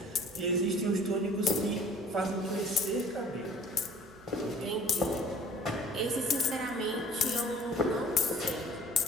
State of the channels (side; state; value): right; noise; hum, 24 dB below the sound